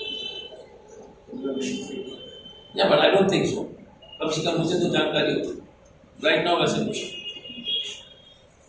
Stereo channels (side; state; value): both; identical; correlation 1.00